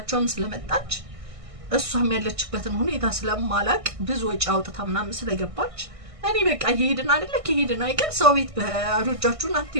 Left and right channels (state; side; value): late; left; 1.6 ms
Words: ስለመጣች እሷም ያለችበትን ሁኔታ ስለማላቅ ብዙ ወጪ አውጥታ ምናምን ስለገባች እኔ በቃ እየሄድን አይደለ ከሄድን አይቀር ሰው ቤት ባዶ እጃችሁን